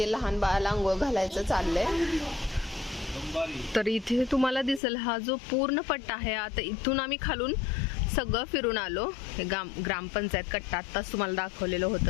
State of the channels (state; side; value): drops out; right; at 4.8 s